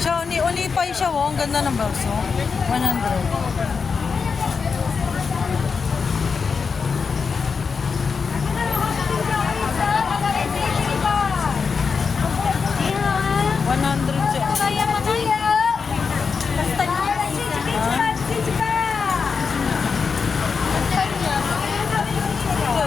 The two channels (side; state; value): right; quieter; 5.4 dB